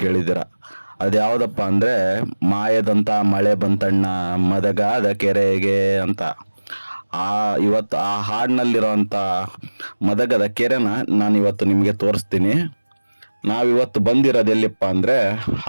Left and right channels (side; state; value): both; inverted; correlation -1.00